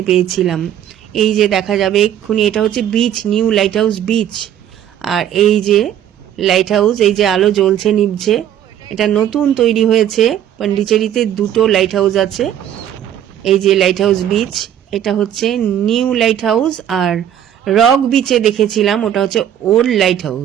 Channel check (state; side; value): quieter; left; 10.5 dB